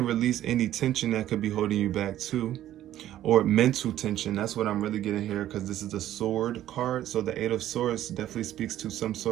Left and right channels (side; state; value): left; quieter; 12.7 dB